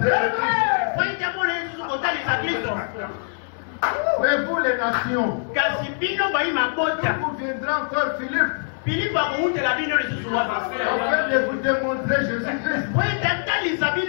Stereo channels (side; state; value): right; silent; 63 dB below the other